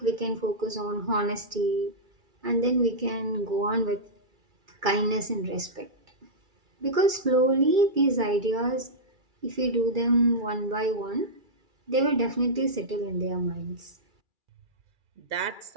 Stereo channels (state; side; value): late; left; 2.3 ms